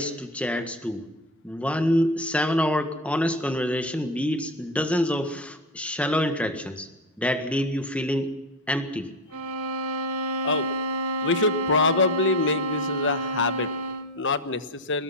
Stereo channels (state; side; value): normal; both; correlation 0.22